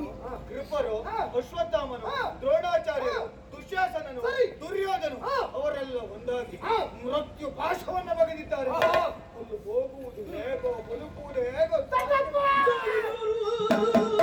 ಕೃಪರು, ಅಶ್ವತ್ಥಾಮನು, ದ್ರೋಣಾಚಾರ್ಯರು, ದುಶ್ಯಾಸನನು, ದುರ್ಯೋಧನು ಅವರೆಲ್ಲ ಒಂದಾಗಿ ಮೃತ್ಯು ಪಾಶವನ್ನ ಬಗೆದಿದ್ದಾರೆ. ಅಲ್ಲಿ ಹೋಗುವುದು ಹೇಗೋ ಬದುಕುವುದು ಹೇಗೋ.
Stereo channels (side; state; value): both; identical; correlation 1.00